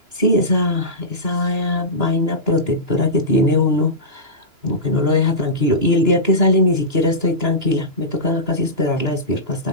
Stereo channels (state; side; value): late; left; 2.9 ms